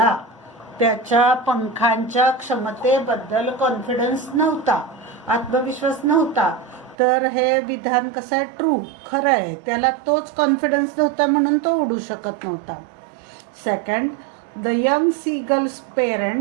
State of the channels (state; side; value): drops out; left; at 7.0 s